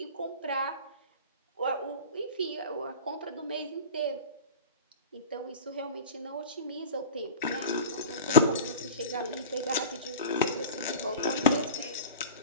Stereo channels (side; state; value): both; inverted; correlation -0.35